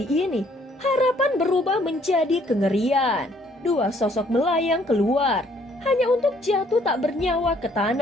ini harapan berubah menjadi kengerian. Dua sosok melayang keluar, hanya untuk jatuh tak bernyawa ke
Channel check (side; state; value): both; normal; correlation 0.64